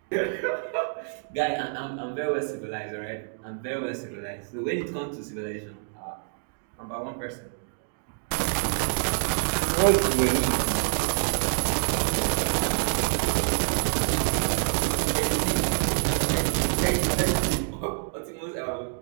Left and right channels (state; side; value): silent; left; digital silence